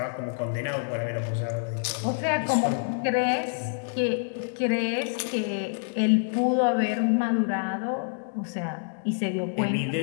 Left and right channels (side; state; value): right; silent; digital silence